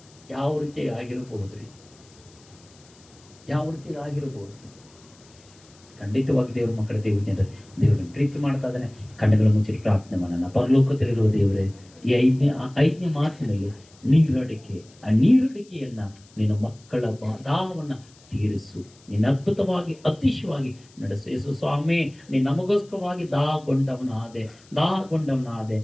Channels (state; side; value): noise; left; hiss, 27 dB below the sound